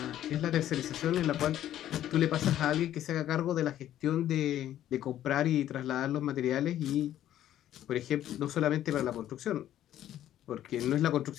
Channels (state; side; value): quieter; right; 12.1 dB